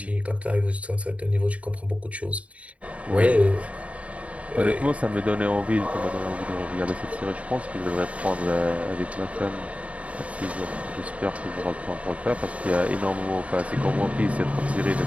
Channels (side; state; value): left; late; 0.066 ms